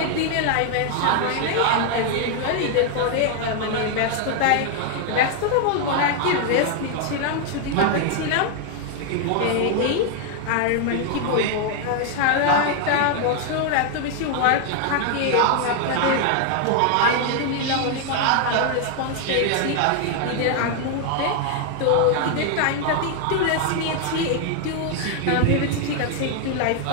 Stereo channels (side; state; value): both; different; correlation 0.00